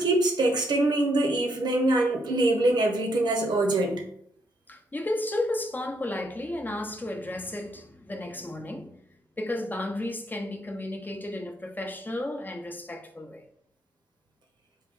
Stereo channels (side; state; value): both; normal; correlation 0.73